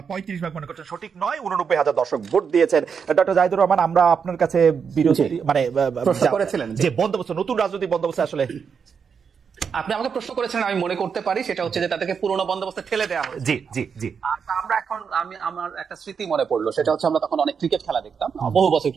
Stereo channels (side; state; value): left; quieter; 6.4 dB